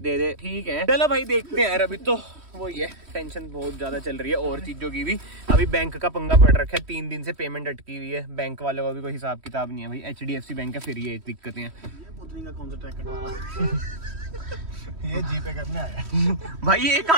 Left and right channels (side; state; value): left; late; 3.1 ms